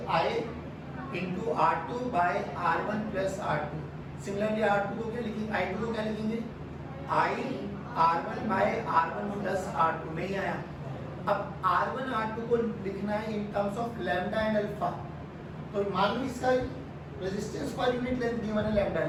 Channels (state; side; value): identical; both; correlation 1.00